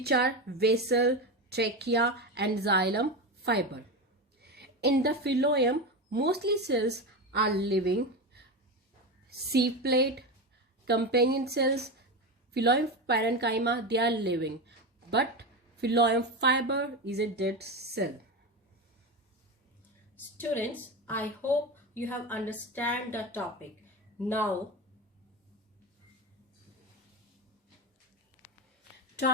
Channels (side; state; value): both; normal; correlation 0.19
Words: are vessel, trachea and xylem fiber. In the phloem, mostly cells are living, sieve plate, companion cells, phloem parenchyma, they are living, but phloem fiber is a dead cell. Students, I hope you have understand the topic. Now,